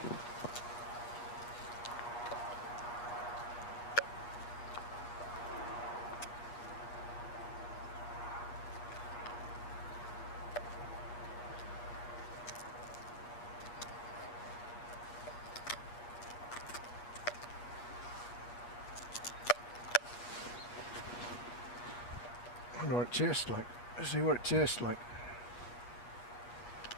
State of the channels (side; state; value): right; late; 8.4 ms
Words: I wonder what it tastes like. Let's see what it tastes like.